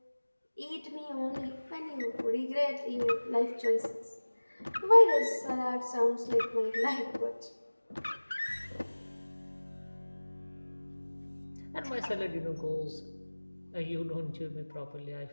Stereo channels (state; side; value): inverted; both; correlation -1.00